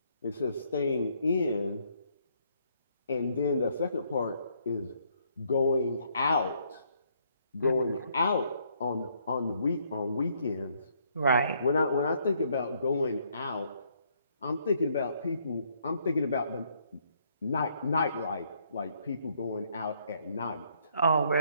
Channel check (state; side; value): inverted; both; correlation -0.69